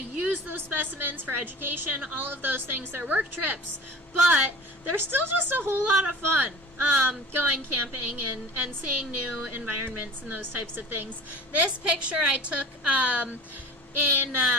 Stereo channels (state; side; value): normal; both; correlation 0.42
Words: those specimens for education, all of those things. They're work trips, but they're still just a whole lot of fun. Going camping and seeing new environments and those types of things. This picture I took in